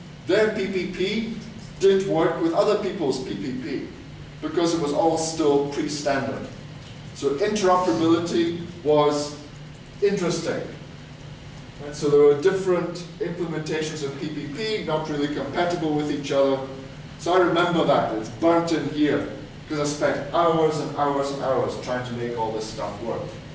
their PPP didn't work with other people's PPP because it was all still pre-standard. So interoperability was interesting. And so there were different implementations of PPP, not really compatible with each other. So I remember that, it's burnt in here, because I spent hours and hours and hours trying to make all this stuff work.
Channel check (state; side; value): identical; both; correlation 1.00